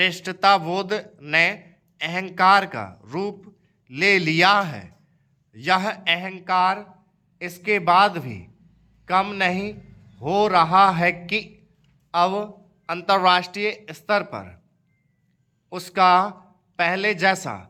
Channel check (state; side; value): identical; both; correlation 1.00